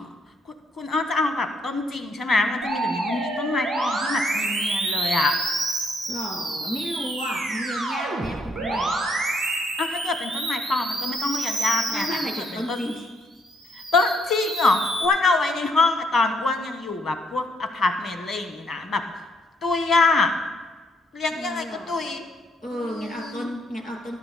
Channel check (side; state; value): both; normal; correlation 0.70